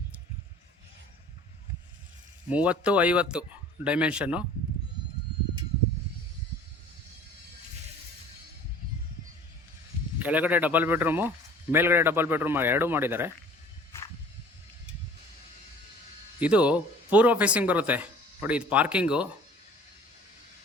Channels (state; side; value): normal; both; correlation 0.47